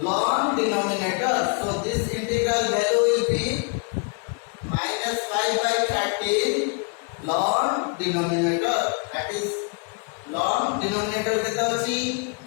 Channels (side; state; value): right; quieter; 35.4 dB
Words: ln denominator, so this integral value will be minus 5 by 13 ln denominator, that is ln denominator केता अछि